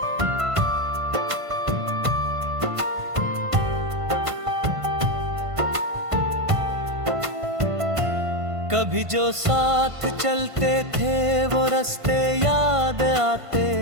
कभी जो साथ चलते थे वो रास्ते याद आते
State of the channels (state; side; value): late; left; 1.5 ms